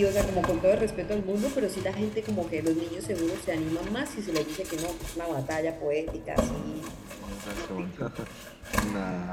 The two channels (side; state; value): both; identical; correlation 1.00